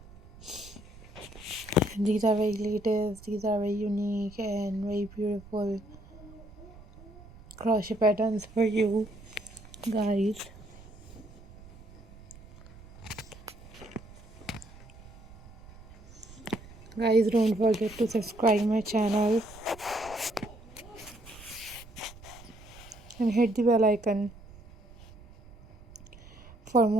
And these are very latest, these are very unique and very beautiful crochet patterns for you guys. Guys, don't forget to subscribe my channel and hit the bell icon for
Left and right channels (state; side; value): noise; right; rumble, 20 dB below the sound